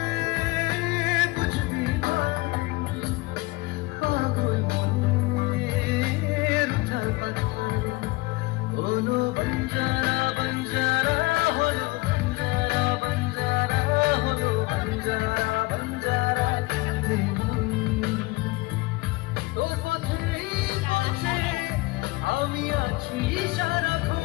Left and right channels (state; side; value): quieter; right; 22.2 dB